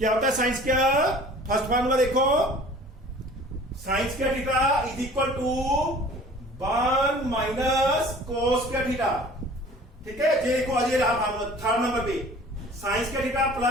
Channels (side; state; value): both; normal; correlation 0.47